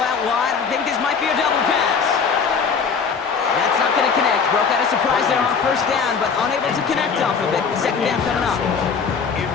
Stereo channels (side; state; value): right; quieter; 5.8 dB